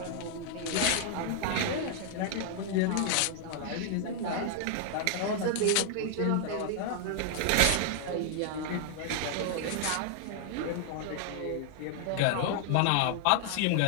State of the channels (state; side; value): different; both; correlation 0.00